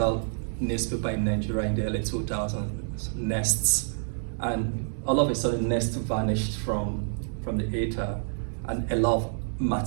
newspaper in Nigeria in the early 2000s, Nests, and all of a sudden Nest vanished from the ether, and a lot of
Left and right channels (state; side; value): silent; left; digital silence